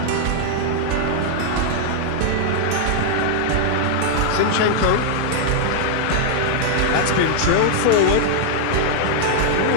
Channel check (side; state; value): both; different; correlation -0.01